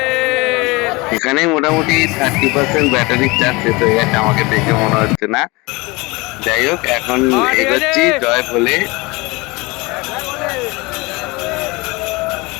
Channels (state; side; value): quieter; right; 24.5 dB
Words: এখানে মোটামুটি 30% ব্যাটারির চার্জ শেষ হয়ে গেছে, আমাকে দেখে মনে হচ্ছে না। যাই হোক, এখন এগোচ্ছি। জয় বলে।